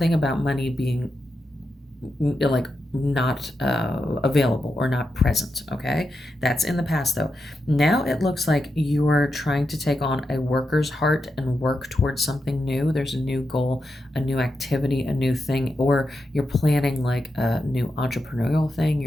about money being like not available or not present. Okay, that's in the past though. Now it looks like you're trying to take on a worker's heart and work towards something new. There's a new goal, a new activity, a new thing, or you're planning like a new entrepreneurial thing.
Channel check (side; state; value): both; normal; correlation 0.87